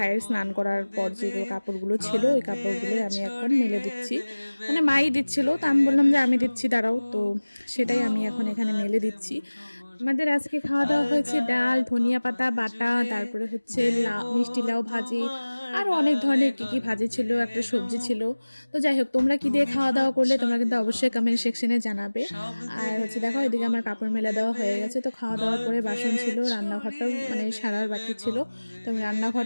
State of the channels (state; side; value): inverted; both; correlation -1.00